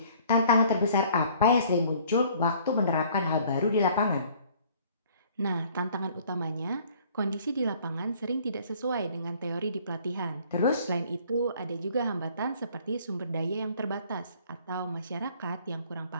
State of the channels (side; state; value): both; inverted; correlation -0.56